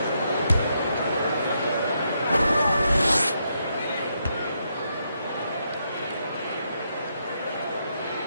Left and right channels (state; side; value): inverted; both; correlation -0.79